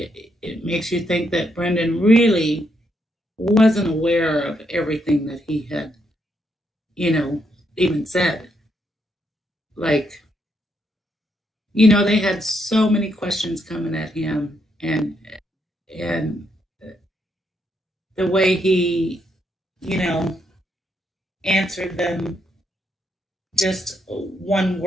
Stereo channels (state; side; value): normal; both; correlation 0.77